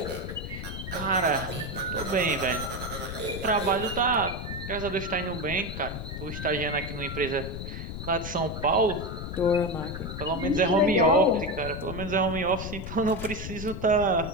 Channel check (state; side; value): noise; left; rumble, 7 dB below the sound